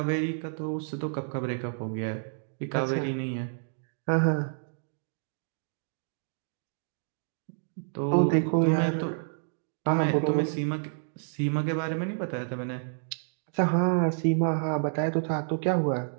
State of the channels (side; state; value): left; silent; digital silence